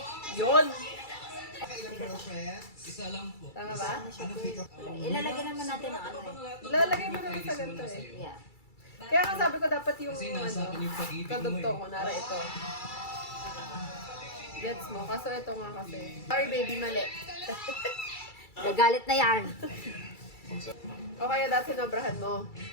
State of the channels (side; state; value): right; late; 2.3 ms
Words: Yun! Kailan girlfriends? Isa lang po. Tama ba? Anong pick up? Ilalagay naman natin ang ano Lalagay mo naman sa ganito eh. Yeah. Kaya nga sabi ko dapat yung kadugto ko, nara ito. Gets mo? Kaso ito nga kasi. Sorry baby, mali. Gagalit na yan. O kaya dati sinobrahan mo.